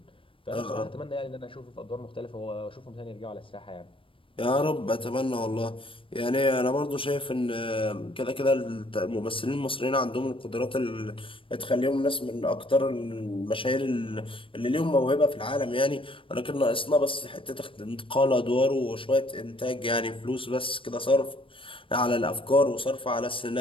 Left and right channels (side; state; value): right; late; 0.25 ms